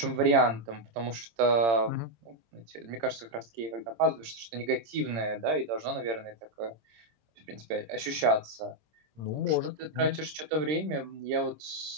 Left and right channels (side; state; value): left; late; 26 ms